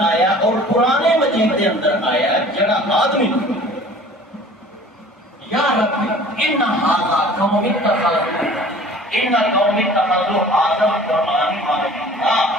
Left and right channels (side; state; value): both; normal; correlation 0.47